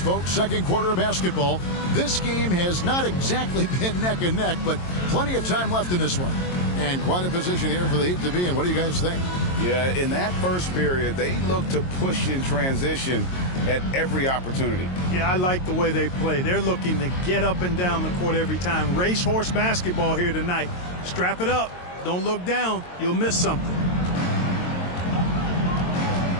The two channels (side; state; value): right; late; 22 ms